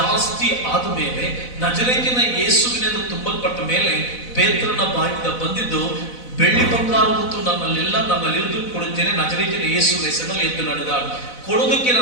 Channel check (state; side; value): late; right; 4.0 ms